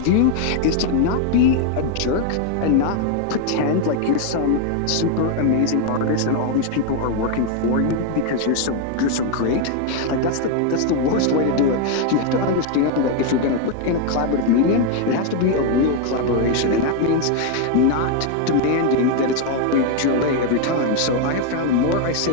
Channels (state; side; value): different; both; correlation 0.01